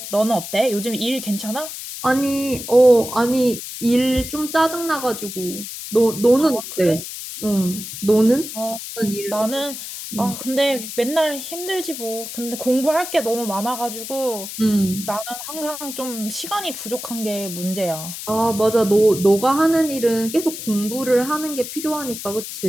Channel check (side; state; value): left; noise; hiss, 9 dB below the sound